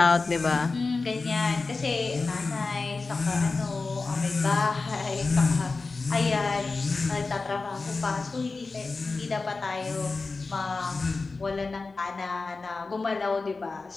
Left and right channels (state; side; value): quieter; right; 3.9 dB